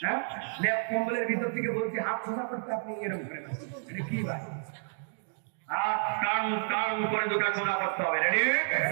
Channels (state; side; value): silent; left; digital silence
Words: হ্যাঁ লেপ কম্বলের ভিতর থেকে বলছি হাত সোজা করতে, আপনি এরকম করে এটা কি ভাই? হাত টান টান করে দুটো সোজা করতে হবে। রেডি?